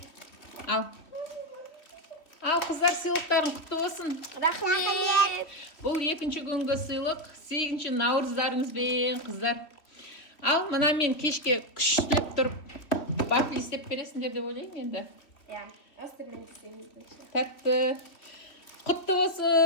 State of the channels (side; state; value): right; late; 3.2 ms